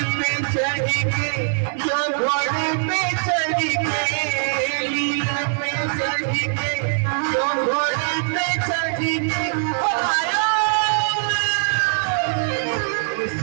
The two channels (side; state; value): left; silent; digital silence